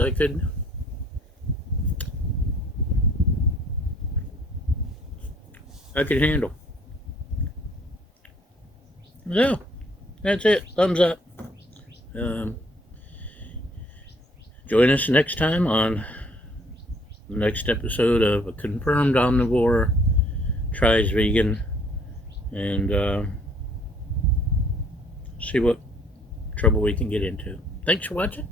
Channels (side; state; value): both; normal; correlation 0.61